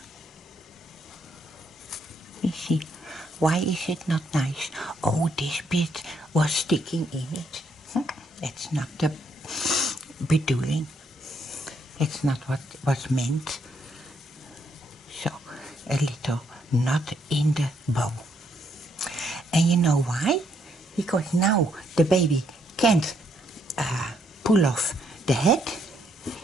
Let me see. Why is it not nice? Oh, this bit was sticking in it. That's not the bedoeling. That's not what was meant. So, a little knot in the bow. And you know why? Because now the baby can't pull off the head,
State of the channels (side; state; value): both; normal; correlation 0.73